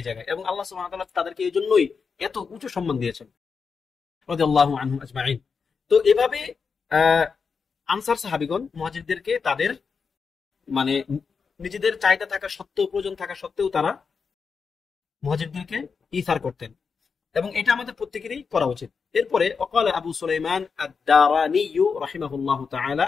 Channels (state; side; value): quieter; right; 5.5 dB